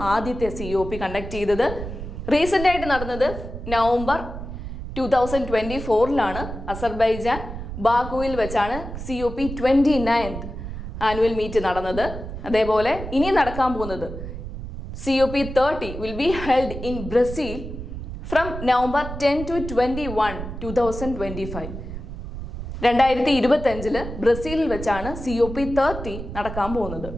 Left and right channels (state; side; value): noise; right; rumble, 9 dB below the sound